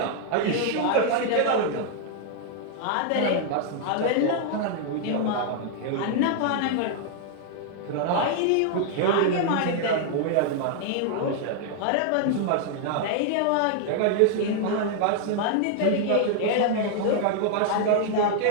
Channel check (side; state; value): both; different; correlation 0.00